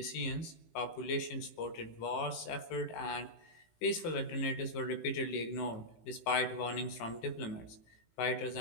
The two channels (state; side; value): late; right; 18 ms